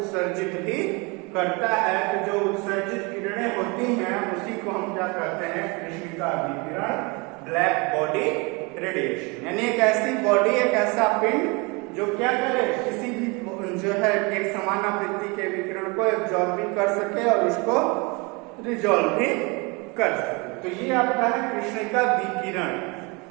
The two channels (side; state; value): left; quieter; 28.5 dB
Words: भी करता है। तो जो उत्सर्जित किरणें होती हैं उसी को हम क्या कहते हैं, कृष्णिका विकिरण, ब्लैक बॉडी रेडिएशन। यानी एक ऐसी बॉडी, एक ऐसा पिंड जो क्या करे, किसी भी जो है एक समान आवृत्ति के विकिरण को एब्जॉर्ब भी कर सके और उसको रिजॉल्व भी कर सके। तो ये आपका है कृष्णिका विकिरण।